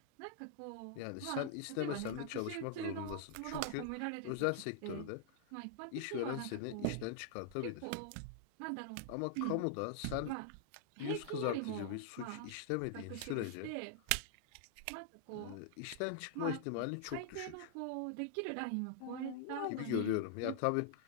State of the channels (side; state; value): both; different; correlation -0.01